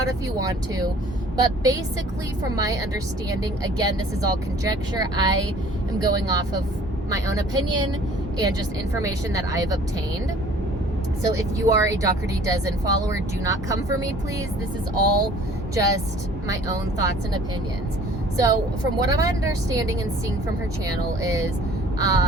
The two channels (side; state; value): both; normal; correlation 0.52